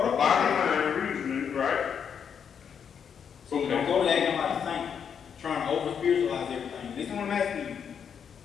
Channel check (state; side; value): quieter; right; 7.5 dB